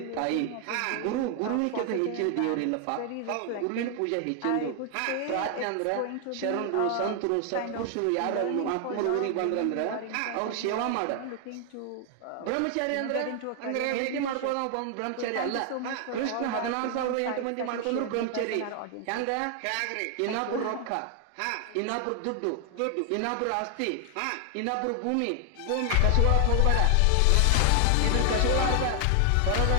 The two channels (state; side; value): different; both; correlation 0.00